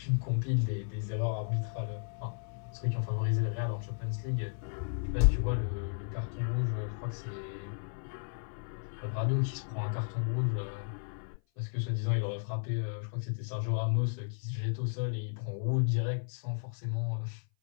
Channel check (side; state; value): right; silent; 55 dB below the other